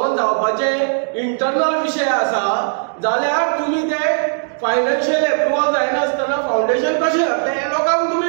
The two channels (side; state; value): left; silent; digital silence